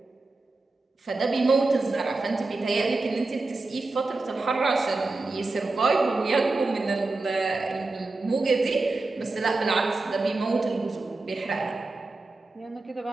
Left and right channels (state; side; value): quieter; left; 3.4 dB